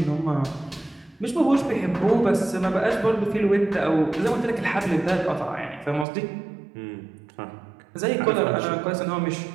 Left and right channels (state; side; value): drops out; left; at 6.1 s